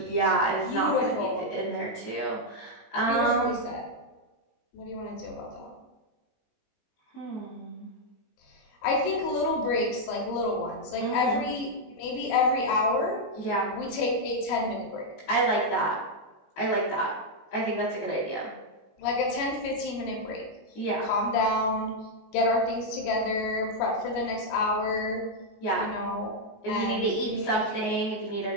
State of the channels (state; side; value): late; right; 19 ms